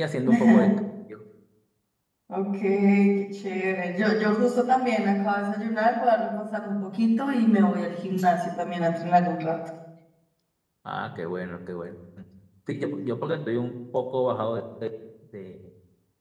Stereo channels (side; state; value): both; identical; correlation 1.00